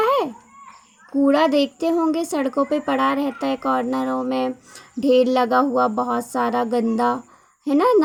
है? कूड़ा देखते होंगे सड़कों पे पड़ा रहता है, कॉर्नरों में ढेर लगा हुआ बहुत सारा गंदा, है ना,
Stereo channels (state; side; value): identical; both; correlation 1.00